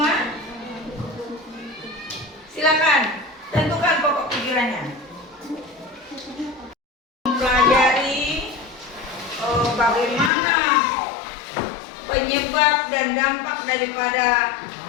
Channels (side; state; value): right; drops out; at 10.3 s